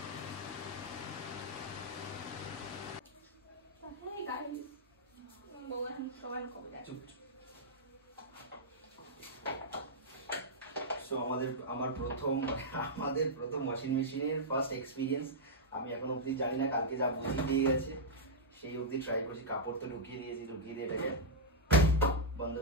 এই গাড়ি বউ এখন সবাই কবে যায়? সো আমার প্রথম ওয়াশিং মেশিনের ফার্স্ট এক্সপিরিয়েন্স। আমি এখন অবধি জানি না, কালকে যা বুঝিয়ে দিয়ে গেছে সেই অবধি ট্রাই করছি। কাপড় তো ঢুকিয়ে দিয়েছি, ঢুকিয়ে দিয়ে এটাকে বন্ধ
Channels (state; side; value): normal; both; correlation -0.08